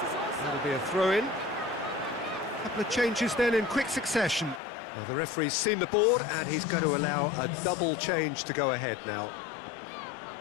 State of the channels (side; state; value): right; drops out; at 4.6 s